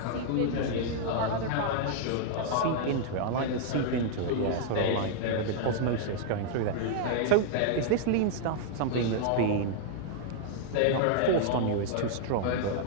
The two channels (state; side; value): different; both; correlation -0.01